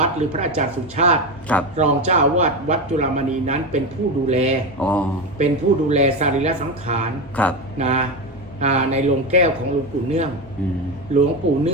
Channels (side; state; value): both; normal; correlation 0.17